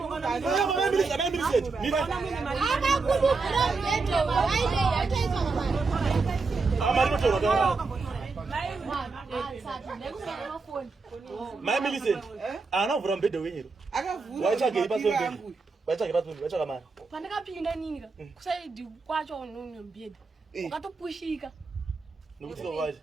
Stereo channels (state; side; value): quieter; left; 4.2 dB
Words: Mama mimi set. Mimi. Akakubukira mbeto waide yataiswa ngamani. Amari kutora. Mafoni. Mama listen. Ana uvura mbedhe wenyero. Akavhura. Waichage ipasombe. Waichage pasombe, waichage mari. Pandakapinda nini ka kusaidi kwacho unombeda wakatopushika Nokuti waje.